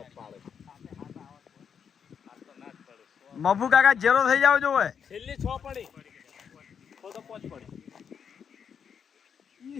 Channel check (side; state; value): right; quieter; 7.2 dB